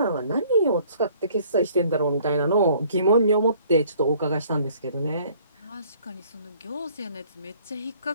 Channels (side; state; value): both; inverted; correlation -0.57